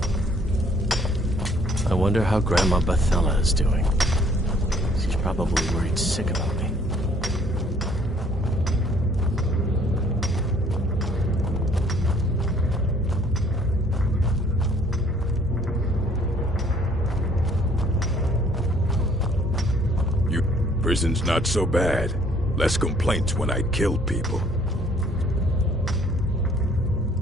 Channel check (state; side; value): normal; both; correlation 0.60